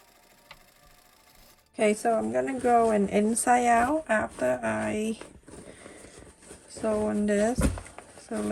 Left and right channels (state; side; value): identical; both; correlation 1.00